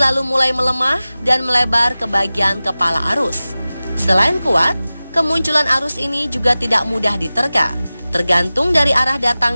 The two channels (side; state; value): both; inverted; correlation -0.97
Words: mulai melemah dan melebar ke bagian kepala arus. Selain kuat, kemunculan arus ini juga tidak mudah diterka, tergantung dari arah